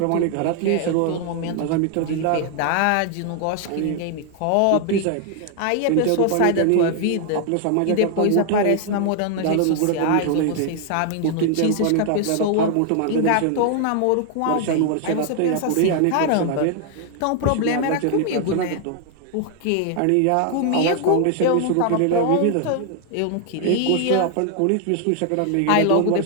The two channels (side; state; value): both; different; correlation 0.00